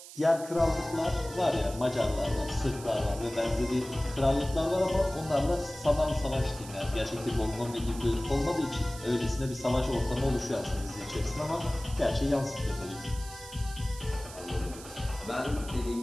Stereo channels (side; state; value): right; noise; hiss, 15 dB below the sound